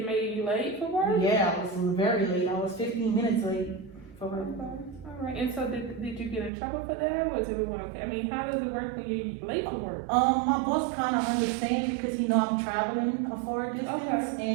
made you late for work? Yeah, I was very late. I was 15 minutes late for work. Okay. All right, and so did you get in trouble for that? Was everyone okay? I mean, how does it work when you're late for work? My boss kind of understands because he know I'm traveling a far distance,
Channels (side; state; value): left; drops out; at 6.5 s